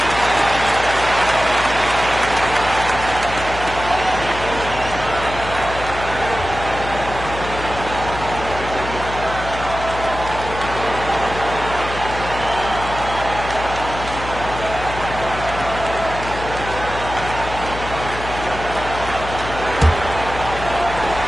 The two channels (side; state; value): left; noise; hum, 9 dB below the sound